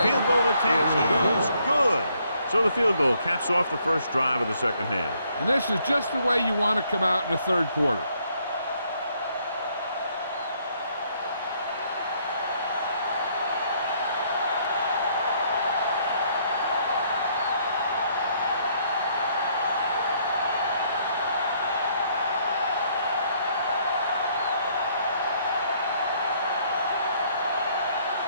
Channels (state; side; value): inverted; both; correlation -0.68